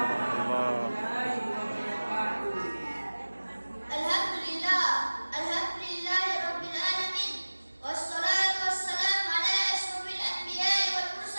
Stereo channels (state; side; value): inverted; both; correlation -1.00